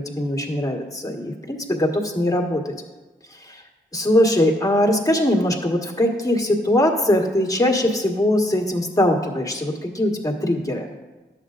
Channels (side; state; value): both; normal; correlation 0.70